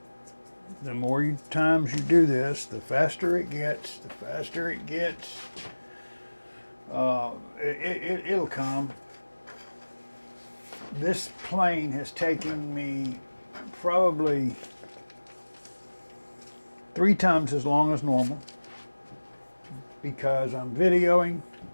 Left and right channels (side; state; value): both; inverted; correlation -1.00